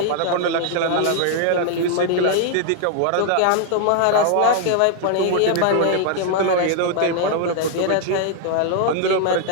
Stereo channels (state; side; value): different; both; correlation 0.00